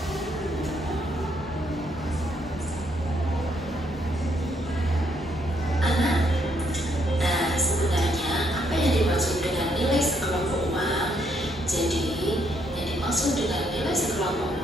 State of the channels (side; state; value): both; normal; correlation 0.72